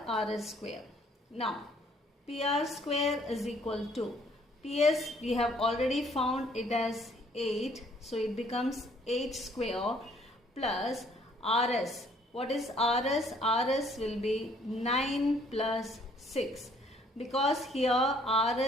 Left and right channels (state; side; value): normal; both; correlation 0.62